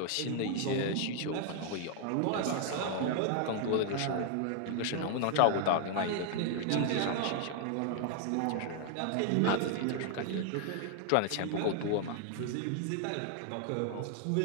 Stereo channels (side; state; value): both; different; correlation 0.00